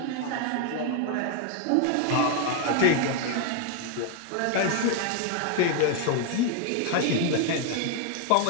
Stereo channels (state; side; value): different; both; correlation 0.00